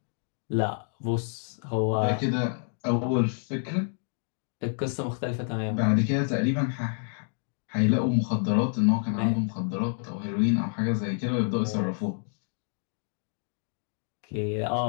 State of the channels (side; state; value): right; silent; 59 dB below the other